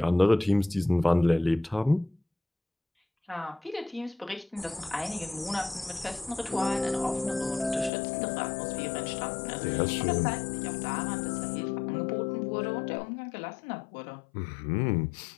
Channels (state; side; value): drops out; right; at 7.9 s